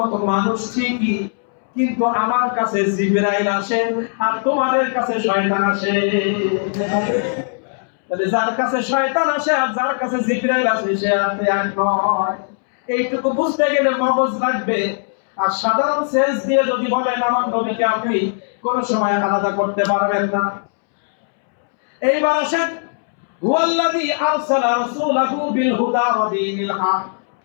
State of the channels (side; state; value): right; silent; 67 dB below the other